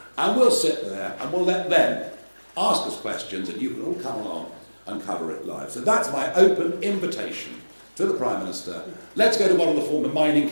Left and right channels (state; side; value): inverted; both; correlation -1.00